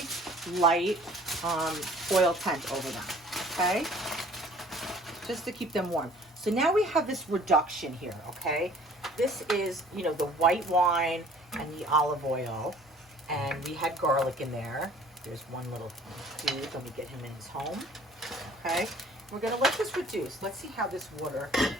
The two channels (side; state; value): both; normal; correlation 0.52